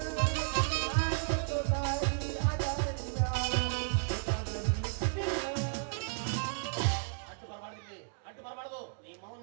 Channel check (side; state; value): left; silent; digital silence